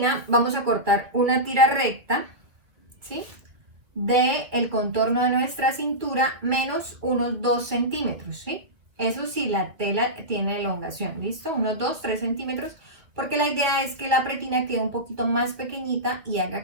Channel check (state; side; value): late; left; 2.6 ms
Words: vamos a cortar una tira recta, ¿sí? De el contorno de nuestra cintura menos unos 2 centímetros, ¿sí? Eso sí, la tela tiene elongación, ¿listo? Unos 2-3 centímetros, porque la idea es que la pretina quede un poquito más pequeñita y